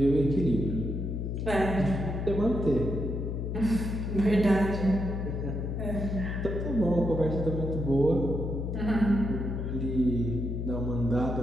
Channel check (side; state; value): left; noise; hum, 3 dB below the sound